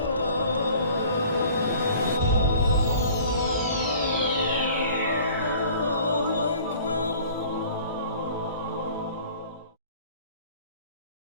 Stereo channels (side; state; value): both; inverted; correlation -0.48